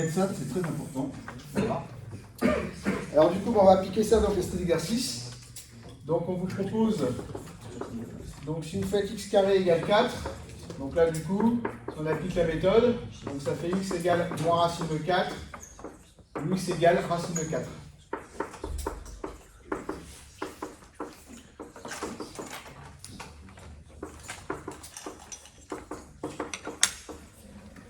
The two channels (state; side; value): identical; both; correlation 1.00